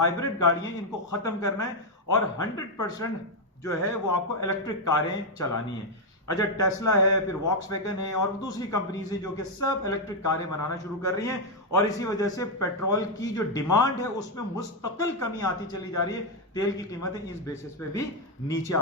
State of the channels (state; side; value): normal; both; correlation 0.02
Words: गाड़ियां, इनको खत्म करना है और 100% जो है वो आपको इलेक्ट्रिक कारें चलानी है। अच्छा, टेस्ला है, फिर वॉक्सवैगन है और दूसरी कंपनीज है जो कि सब इलेक्ट्रिक कारें बनाना शुरू कर रही हैं, और इसी वजह से पेट्रोल की जो डिमांड है उसमें मुस्तकिल कमी आती चली जा रही है। तेल की कीमतें इस बेसिस पे भी नीचे